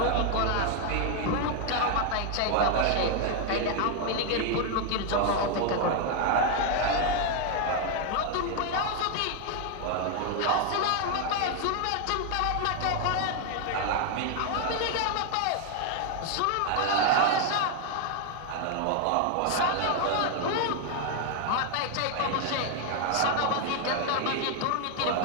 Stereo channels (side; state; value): both; different; correlation 0.01